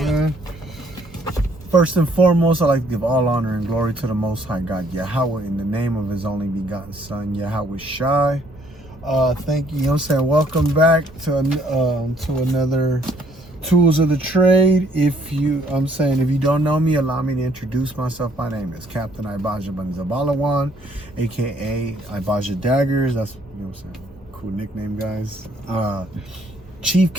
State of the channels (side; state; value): both; normal; correlation 0.64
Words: First and foremost, I'd like to give all honor and glory to the Most High God, Yahweh, in the name of His only begotten Son, YHWH. Thank you, you know what I'm saying? Welcome back to another Tools of the Trade. If you don't know me, allow me to introduce myself. My name is Captain IBADYAH Dagrz, aka IBADYAH Dagrz. That's, you know what I'm saying, cool nickname, guys. Chief